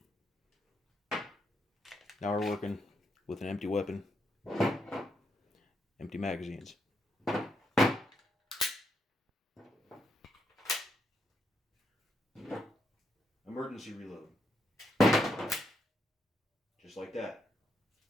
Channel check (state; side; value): normal; both; correlation 0.79